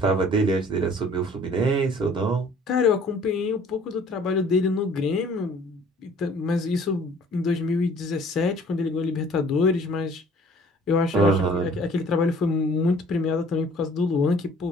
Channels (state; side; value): normal; both; correlation 0.54